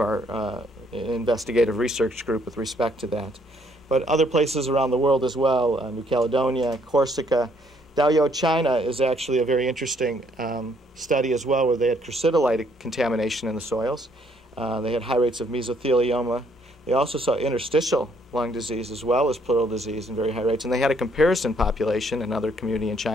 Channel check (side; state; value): both; normal; correlation 0.67